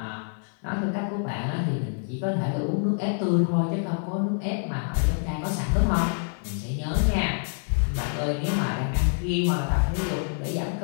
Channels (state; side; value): silent; right; 61 dB below the other